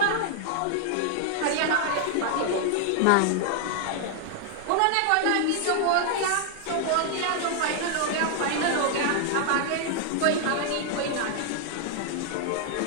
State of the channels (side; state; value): both; different; correlation 0.00